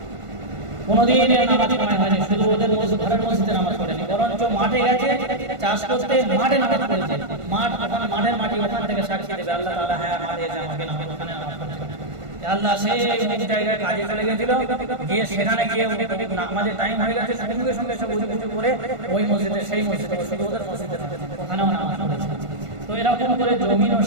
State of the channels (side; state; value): left; late; 1.5 ms